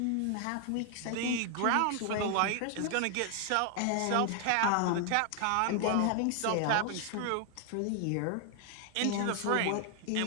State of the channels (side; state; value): both; different; correlation 0.00